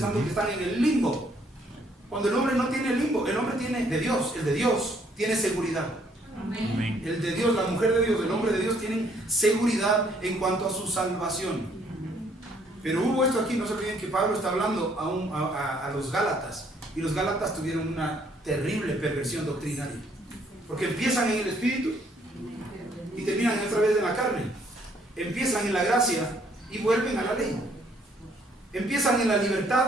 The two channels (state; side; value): normal; both; correlation 0.66